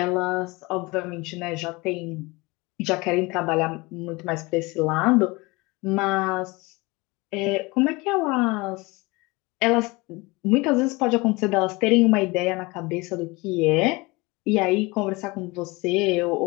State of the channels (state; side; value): quieter; right; 24.3 dB